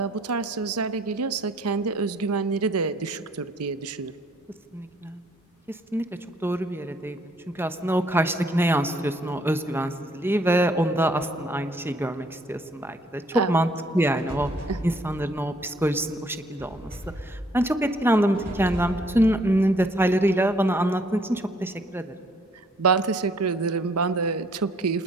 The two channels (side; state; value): both; normal; correlation 0.63